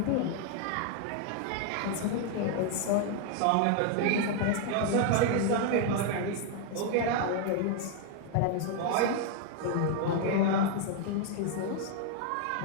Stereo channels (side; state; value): both; different; correlation 0.00